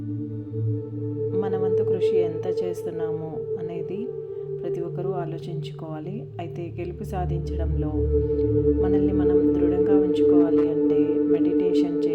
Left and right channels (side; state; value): both; identical; correlation 1.00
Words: మన వంతు కృషి ఎంత చేస్తున్నామో అనేది ప్రతి ఒక్కరూ ఆలోచించుకోవాలి. అయితే గెలుపు సాధించడంలో మనల్ని మనం దృఢంగా ఉంచుకోవాలి అంటే మెడిటేషన్